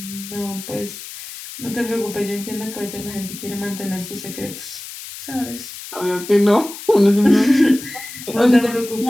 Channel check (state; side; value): noise; left; hiss, 12 dB below the sound